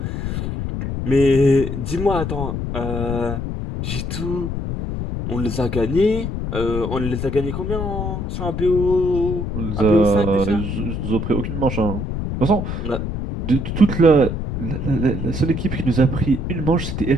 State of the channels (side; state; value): left; noise; rumble, 3 dB below the sound